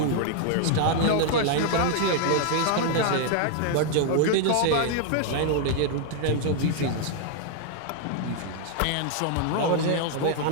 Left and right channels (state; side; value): different; both; correlation 0.00